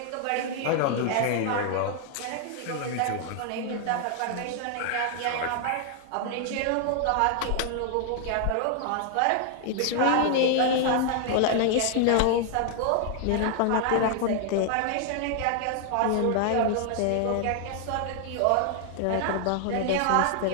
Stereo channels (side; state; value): both; different; correlation 0.00